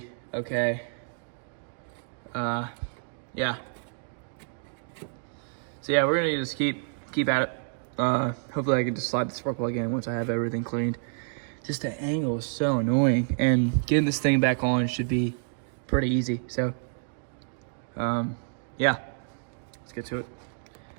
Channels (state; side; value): silent; left; digital silence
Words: okay. Yeah. So yeah, we're gonna just keep at it. Hopefully I can just slide the spark plug in once I have everything cleaned. Just the angle is so annoying, and getting this thing back on should be pretty easy. So, yeah, let's get to it.